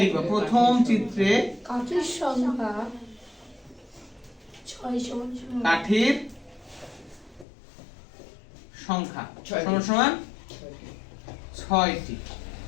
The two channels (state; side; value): drops out; right; at 7.5 s